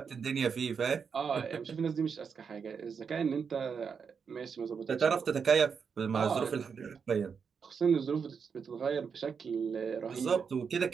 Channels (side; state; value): left; quieter; 6.2 dB